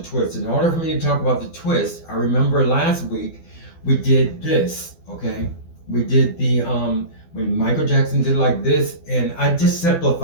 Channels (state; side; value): late; right; 12 ms